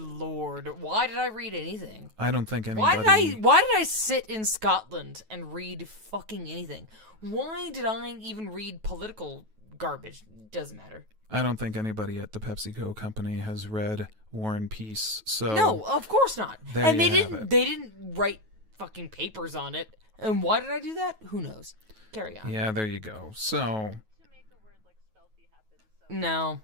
why did I read anything? I don't think anybody. Why did I sit in Scotland and read fucking anything? Why did I even read political garbage? Doesn't matter. I don't think anybody at the PepsiCo company has read War and Peace. So No, of course not. There And you they have didn't. it. They didn't write fucking papers on it. And why did I do that? Who knows? Carry on. Yeah, there you go. So To make a word like Spelky happen, so No,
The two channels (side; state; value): left; late; 9.3 ms